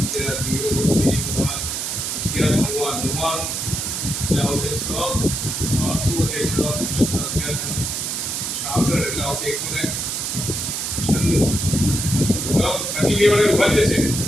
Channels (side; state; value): right; noise; hiss, 2 dB below the sound